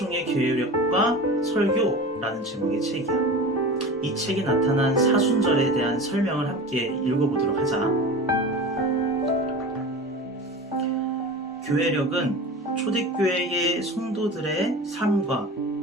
교회력과 설교라는 제목의 책이야. 이 책에 나타난 사순절에 대한 설명을 함께 읽어보도록 하자. 교회력은 초대교회의 성도들의 삶과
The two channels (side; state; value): both; normal; correlation 0.32